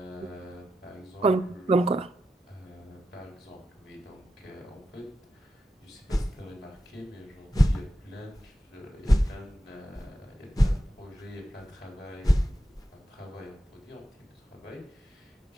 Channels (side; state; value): both; normal; correlation 0.89